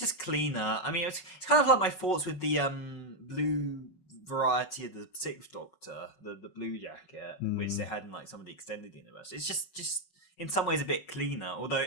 cleaner. I mean, it's kind of like my thoughts with the blue variety of the Sixth Doctor, the blue jacket, which they had in like some of the extended universe. It's just in some ways a bit cleaner, although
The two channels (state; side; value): late; right; 5.4 ms